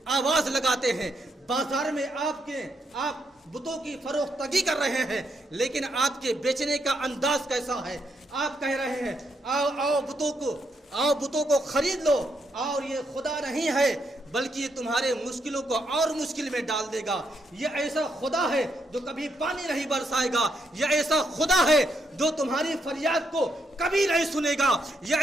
آواز لگاتے ہیں، بازار میں آپ بتوں کی فروختگی کر رہے ہیں، لیکن آپ کے بیچنے کا انداز کیسا ہے؟ آپ کہہ رہے ہیں آؤ بتوں کو خرید لو، اور یہ خدا نہیں ہے بلکہ یہ تمہارے مشکلوں کو اور مشکل میں ڈال دے گا، یہ ایسا خدا ہے جو کبھی پانی نہیں برسائے گا، یہ ایسا خدا ہے جو تمہاری فریاد کو کبھی نہیں سنے گا،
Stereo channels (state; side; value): normal; both; correlation 0.78